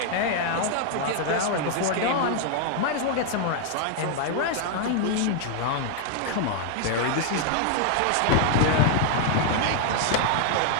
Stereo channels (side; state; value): both; different; correlation 0.00